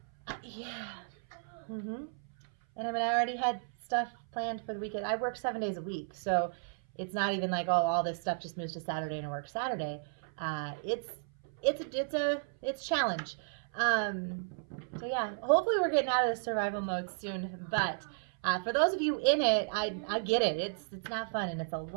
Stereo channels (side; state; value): left; silent; 55 dB below the other